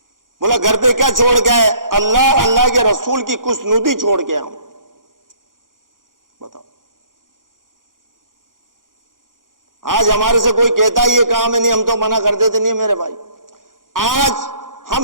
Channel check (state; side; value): late; left; 0.90 ms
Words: بولا گھر پہ کیا چھوڑ کے آئے؟ اللہ کے رسول کی خوشنودی چھوڑ کے آؤں۔ بتاؤ، آج ہمارے سے کوئی کہتا ہے یہ کام ہے، نہیں ہم تو منع کر دیتے، نہیں میرے بھائی۔ آج